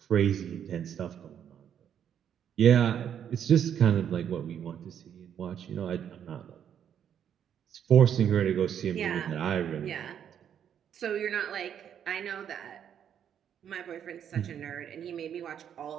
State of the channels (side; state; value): left; quieter; 9.0 dB